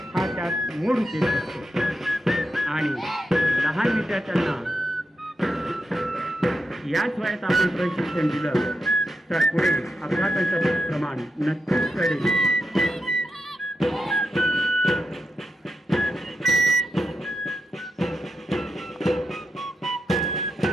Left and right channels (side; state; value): both; normal; correlation 0.86